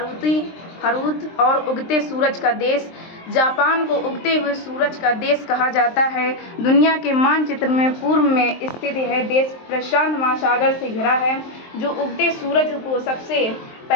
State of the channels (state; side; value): late; right; 23 ms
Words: हरूत और उगते सूरज का देश। जापान को उगते हुए सूरज का देश कहा जाता है। दुनिया के मानचित्र में पूर्व में स्थित यह देश प्रशांत महासागर से घिरा है, जो उगते सूरज को सबसे